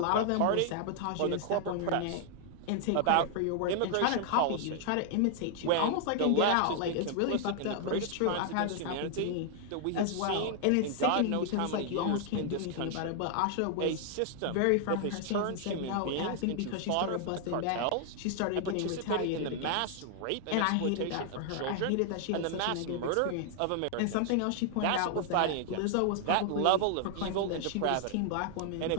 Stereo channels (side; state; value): both; different; correlation 0.00